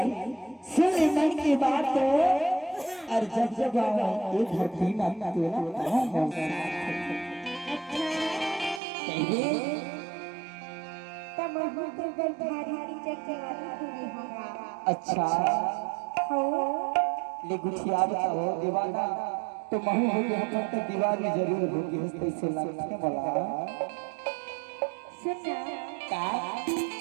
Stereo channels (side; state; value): left; drops out; at 8.8 s